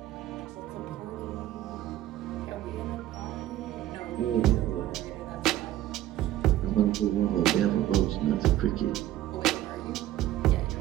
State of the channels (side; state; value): left; quieter; 13.6 dB